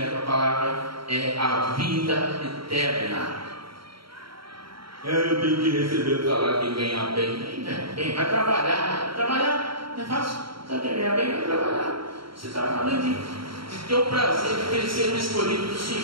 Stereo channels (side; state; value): left; late; 0.74 ms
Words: a palavra é a vida eterna. Eu tenho que receber o salário de ganhar bem. Vai trabalhar. Trabalhar não é fácil. Você quer ganhar bem? Vai trabalhar. Você está falando de ter o prazer de crescer no escolhido do